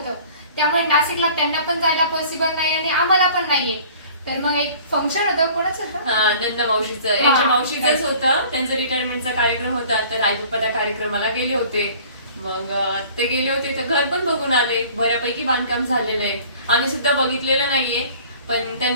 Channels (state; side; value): inverted; both; correlation -0.48